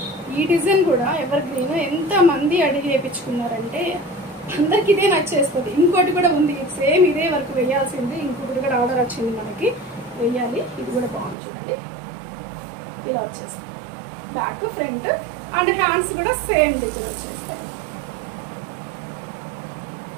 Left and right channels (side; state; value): left; drops out; at 11.4 s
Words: ఈ డిజైన్ కూడా ఎవర్ గ్రీన్ ఎంత మంది అడిగి వేయించుకున్నారంటే అందరికి ఇదే నచ్చేస్తుంది. ఇంకోటి కూడా ఉంది సేమ్ ఇదే వరకు వేయాల్సింది, ఇంకొకటి కూడా ఆర్డర్ వచ్చింది మనకి వేయాలి. ఇది కూడా బాగుంది చూడండి, ఇలా వచ్చేస్తుంది బ్యాక్ ఫ్రంట్ అండ్ హ్యాండ్స్ కూడా సేమ్ డిజైన్ వచ్చేస్తాయి.